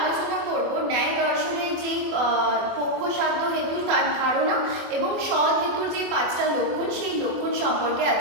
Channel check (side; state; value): left; late; 24 ms